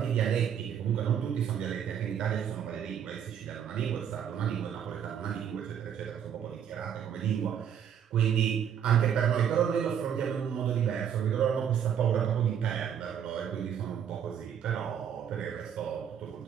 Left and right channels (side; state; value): left; quieter; 8.7 dB